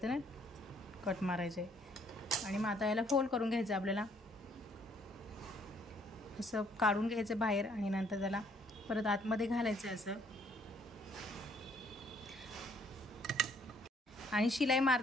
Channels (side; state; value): both; normal; correlation 0.65